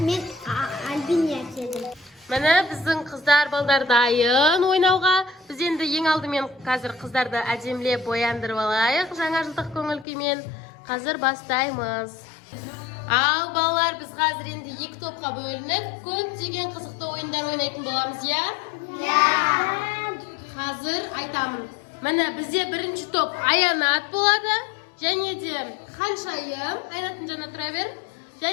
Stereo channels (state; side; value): drops out; right; at 10.1 s